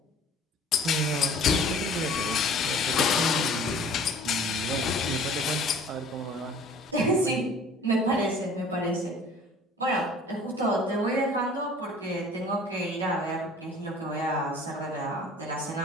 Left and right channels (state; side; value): normal; both; correlation 0.48